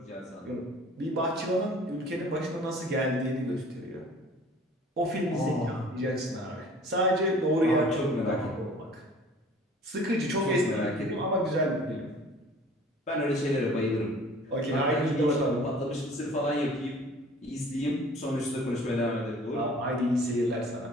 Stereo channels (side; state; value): both; normal; correlation 0.49